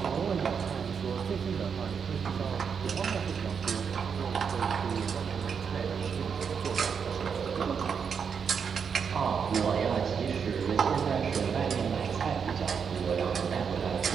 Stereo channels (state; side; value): quieter; left; 6.6 dB